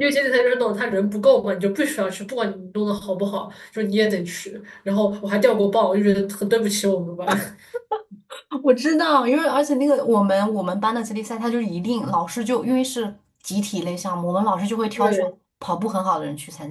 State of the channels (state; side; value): identical; both; correlation 1.00